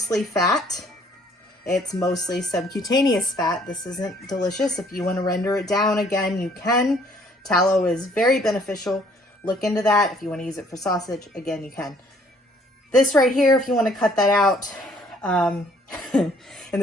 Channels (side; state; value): both; normal; correlation 0.61